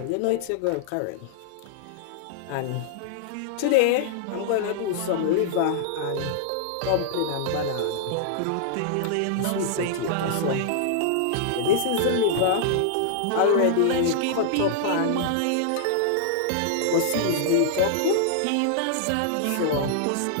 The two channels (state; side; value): different; both; correlation -0.01